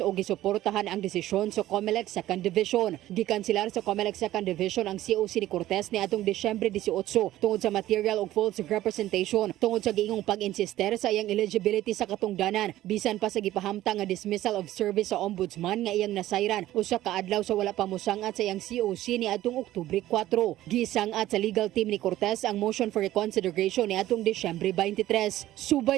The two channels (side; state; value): left; quieter; 14.6 dB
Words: o gisuportahan ang desisyon sa COMELEC Second Division. Gikansilar sa COMELEC Second Division ang COC ni Cortez ni atong Disyembre 18 tungod sa material o false representation tungod sa giingong pag-insister sa iyang eligibility sa katungdanan bisan pa sa gipahamtang nga dismissal of service sa ombudsman nga iyang nasayran usa ka adlaw sa wala pa mosangat sa iyang COC ni atong Oktubre 4. Gisangat sa legal team ni Cortez ang motion for reconsideration ni atong Disyembre 23.